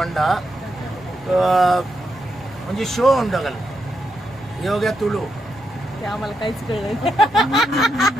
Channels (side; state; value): both; normal; correlation 0.83